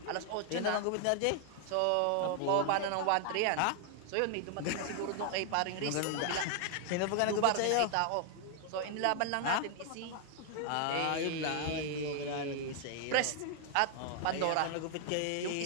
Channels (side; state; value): both; different; correlation 0.00